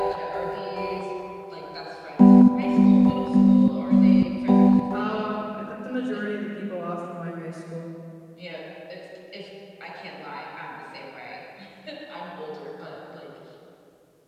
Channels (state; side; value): identical; both; correlation 1.00